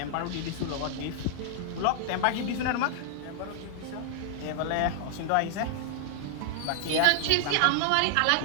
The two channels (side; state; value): both; different; correlation -0.01